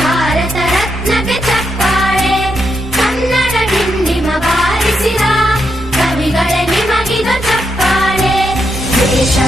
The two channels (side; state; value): both; normal; correlation 0.82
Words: ರತ್ನಕ್ಕೆ ಚಪ್ಪಾಳೆ. ಕನ್ನಡ ಡಿಂಡಿಮ ಬಾರಿಸಿದ ಕವಿಗಳೇ ನಿಮಗಿದು ಚಪ್ಪಾಳೆ.